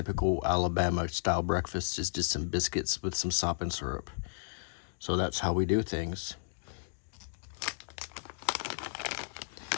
Alabama style breakfast. It's just some biscuits with some sop and syrup. So that's how we do things.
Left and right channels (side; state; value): right; silent; digital silence